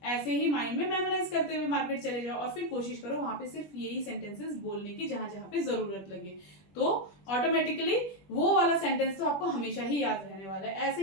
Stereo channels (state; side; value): late; right; 21 ms